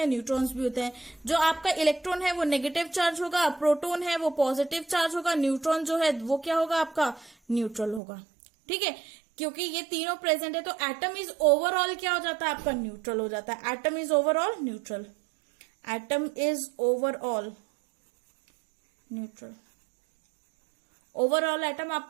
न्यूट्रॉन्स भी होते हैं। जो आपका इलेक्ट्रॉन है वो नेगेटिव चार्ज होगा, प्रोटॉन है वो पॉजिटिव चार्ज होगा, न्यूट्रॉन जो है वो क्या होगा? आपका न्यूट्रल होगा। ठीक है, क्योंकि ये तीनों प्रेजेंट है तो एटम इज ओवरऑल क्या हो जाता है? आपका न्यूट्रल हो जाता है। Atom is overall neutral, atom is overall neutral. Overall atom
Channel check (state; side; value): drops out; left; at 8.0 s